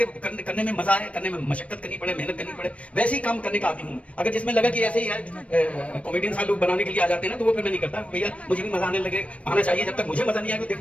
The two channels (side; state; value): right; late; 0.064 ms